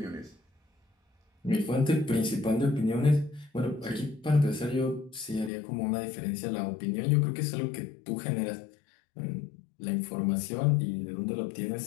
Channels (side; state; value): right; drops out; at 5.5 s